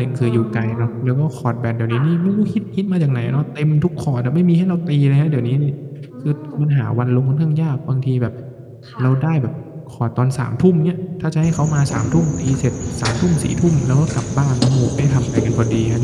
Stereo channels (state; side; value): identical; both; correlation 1.00